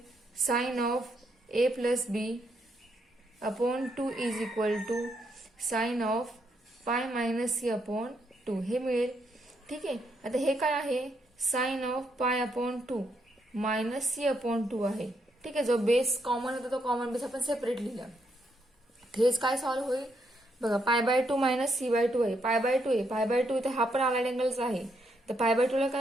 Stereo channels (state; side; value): normal; both; correlation 0.77